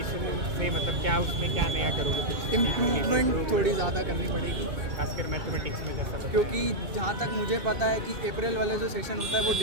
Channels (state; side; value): late; left; 2.7 ms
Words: से मतलब क्या उसमें क्या नया करोगे? इम्प्रूवमेंट थोड़ी ज़्यादा करनी पड़ेगी, खासकर मैथमेटिक्स में जैसा क्योंकि जहाँ तक मुझे पता है कि अप्रैल वाला जो सेक्शन होता है वो